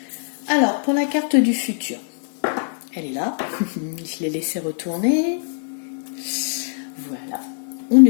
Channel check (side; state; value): right; silent; digital silence